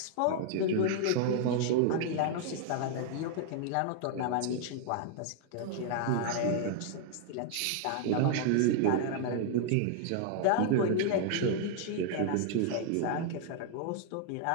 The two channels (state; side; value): different; both; correlation 0.00